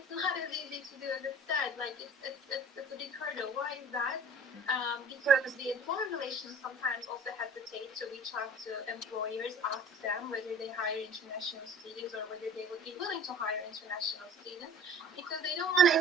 not as easy to do as it said. Like it's a big hurdle. Why is that? Because the employer relations sometimes also hesitate to reach out to employers, ask them whether they hire international students or whether they would be willing to hire international students, because they don't want to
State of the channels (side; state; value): both; normal; correlation 0.46